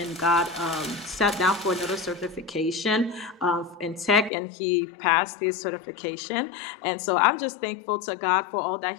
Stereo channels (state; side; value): drops out; right; at 4.3 s